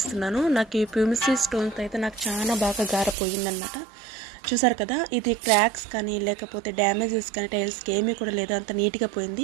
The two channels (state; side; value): drops out; left; at 3.2 s